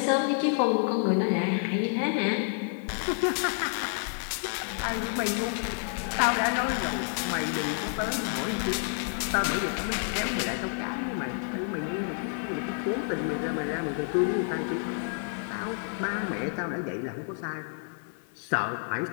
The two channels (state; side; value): silent; right; 57 dB below the other